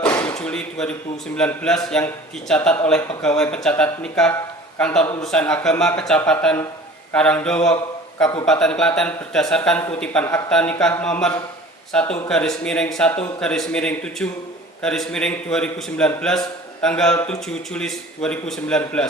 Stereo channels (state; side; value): normal; both; correlation 0.44